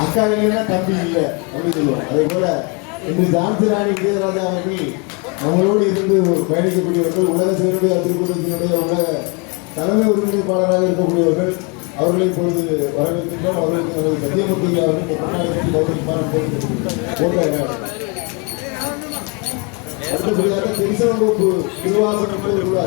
அக்கா இல்லைன்னா தம்பி இல்லை அப்படின்னு சொல்லுவோம். அதே போல இன்று ஜான்சி ராணி விஜயராஜா அவர்கள் நம்மளோடு இருந்து பயணிக்கக்கூடியவர்கள், உலக சேருடைய திருக்கூட்டத்தினுடைய உலக தலைமை ஒருங்கிணைப்பாளராக இருக்கக்கூடியவர்கள். அவர்களை இப்பொழுது வரவேற்கின்றோம். அவர்களுக்கு நமது சத்தியமூர்த்தி அவர்கள் அடுத்தபடியாக திருச்செங்கோப்பு திருவாசகம்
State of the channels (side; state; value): right; quieter; 32.5 dB